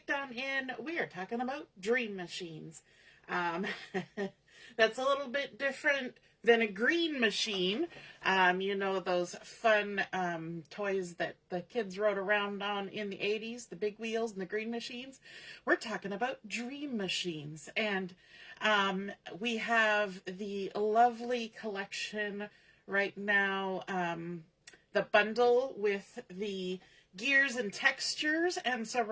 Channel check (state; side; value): identical; both; correlation 1.00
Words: on in, we are talking about dream machines. That's a little bit different than a green machine. You know, those fun toys that the kids rode around on in the 80s, the big wheels and the green machines. We're talking about dream machines. And we have the lovely collection right now, the bundle with the gears and textures, and so